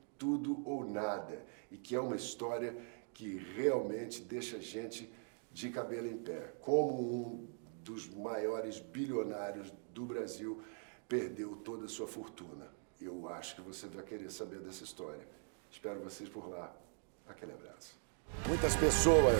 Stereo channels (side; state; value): left; silent; 50 dB below the other